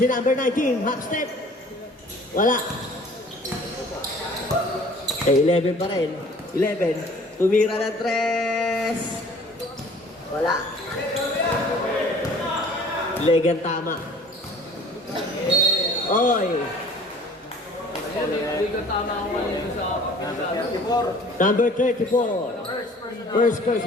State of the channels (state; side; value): normal; both; correlation 0.51